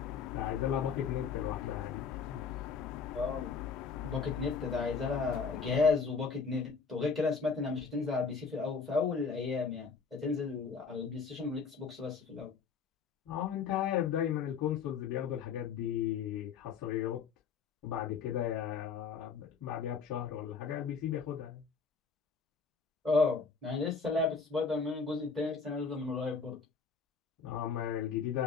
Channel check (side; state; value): right; quieter; 5.5 dB